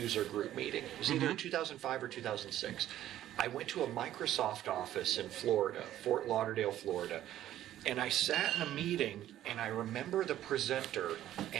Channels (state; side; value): quieter; left; 12.7 dB